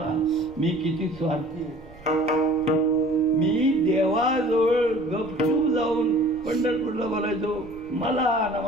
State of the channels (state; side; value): noise; right; rumble, 21 dB below the sound